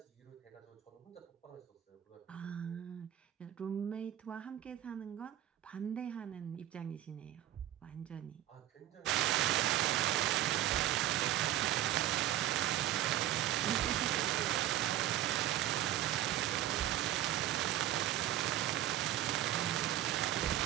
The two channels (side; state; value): left; quieter; 12.7 dB